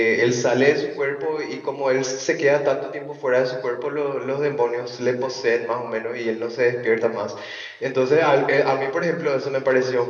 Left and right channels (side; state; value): both; identical; correlation 1.00